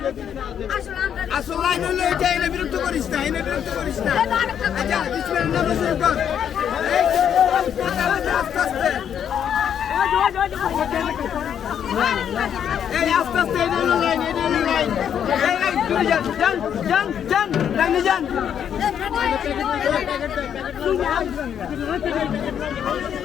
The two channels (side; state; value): right; quieter; 8.8 dB